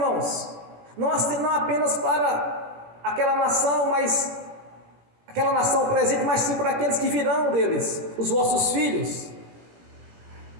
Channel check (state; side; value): late; left; 18 ms